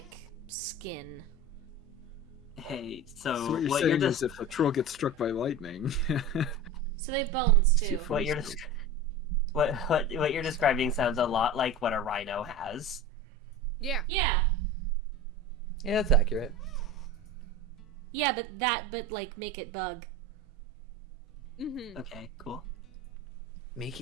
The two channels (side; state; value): both; normal; correlation 0.31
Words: skin. Hey, so So what you're what saying you're is if a troll gets struck by lightning. So they have bones too. what you're what you're describing sounds a lot like what a rhino has. Yeah. Yeah. Yeah, that's accurate. Yeah, but like make it bug. Mm-hmm. Okay, cool. Make